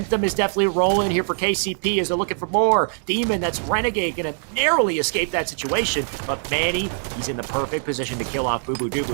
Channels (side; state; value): left; silent; 64 dB below the other